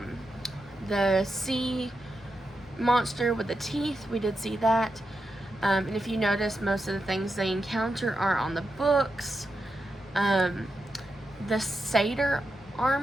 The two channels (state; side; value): normal; both; correlation 0.87